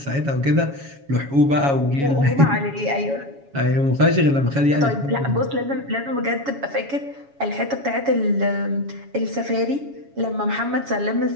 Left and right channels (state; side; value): late; left; 7.2 ms